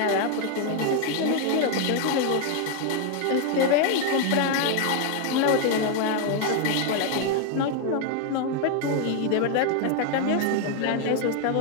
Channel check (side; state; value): both; different; correlation 0.00